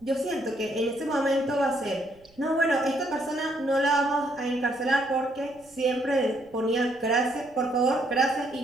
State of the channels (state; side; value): noise; right; rumble, 30 dB below the sound